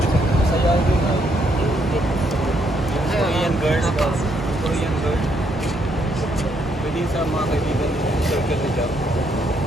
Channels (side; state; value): both; normal; correlation 0.73